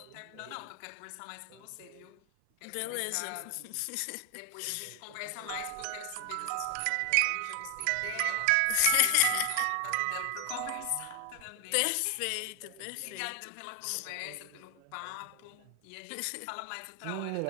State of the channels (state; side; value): different; both; correlation 0.00